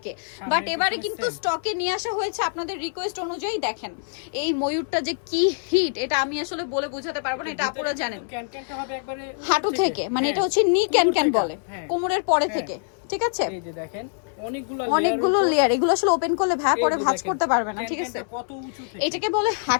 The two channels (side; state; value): right; silent; 61 dB below the other